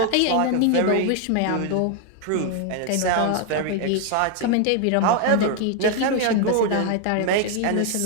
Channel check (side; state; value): both; different; correlation 0.01